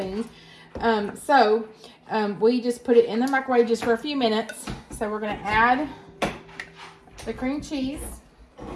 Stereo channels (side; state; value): both; identical; correlation 1.00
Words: We just put it in the microwave just for a few minutes. So we're going to add the cream cheese.